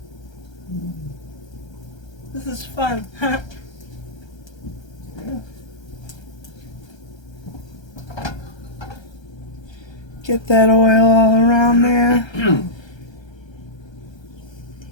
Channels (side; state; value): right; late; 1.3 ms